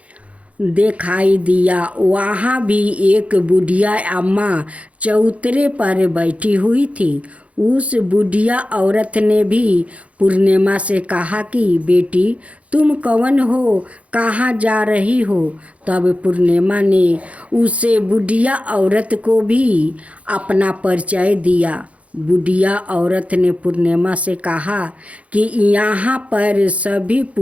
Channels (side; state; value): left; late; 0.065 ms